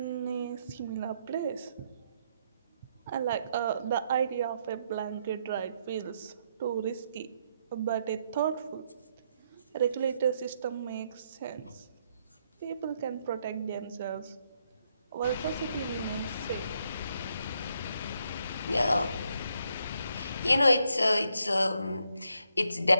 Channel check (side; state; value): both; inverted; correlation -0.76